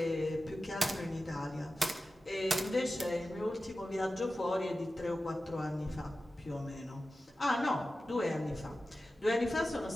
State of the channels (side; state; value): both; normal; correlation 0.94